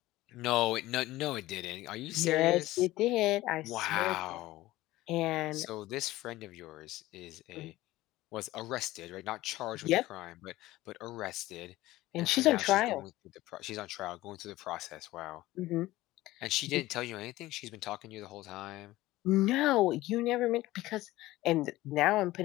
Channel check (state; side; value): quieter; right; 17.4 dB